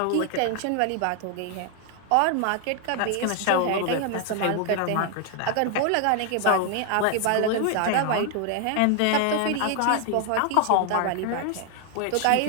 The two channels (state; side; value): different; both; correlation 0.00